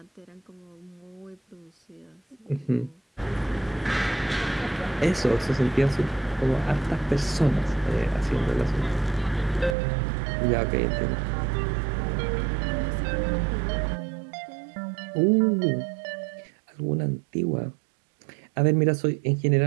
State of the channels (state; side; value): drops out; left; at 9.8 s